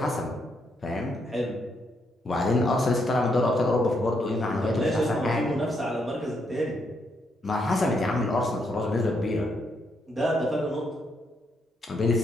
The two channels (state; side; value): normal; both; correlation 0.77